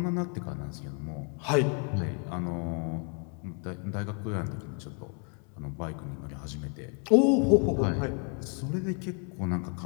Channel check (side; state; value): right; quieter; 39.7 dB